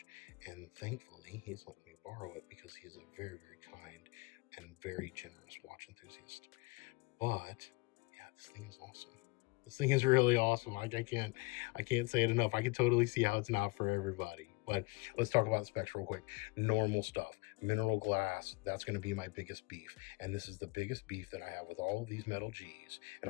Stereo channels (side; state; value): right; quieter; 24.9 dB